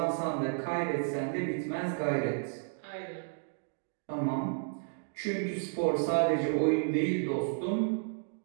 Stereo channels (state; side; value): silent; left; digital silence